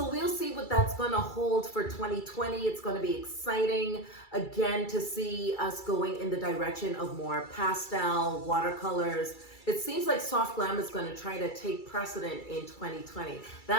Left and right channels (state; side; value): late; right; 2.3 ms